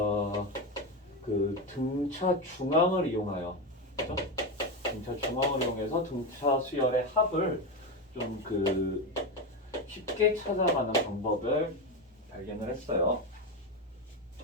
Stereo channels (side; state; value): both; normal; correlation 0.14